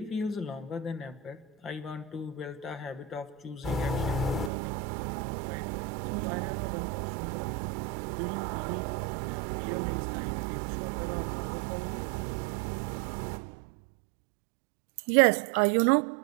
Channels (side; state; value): left; drops out; at 4.5 s